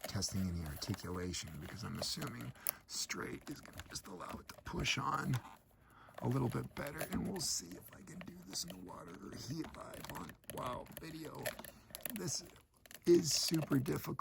testing any articulation because I'm assuming straight is going to just allow it to push on a little bit better. And we'll see if I can do this in the water or heat live on, wow, video. This is super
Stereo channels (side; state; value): both; identical; correlation 1.00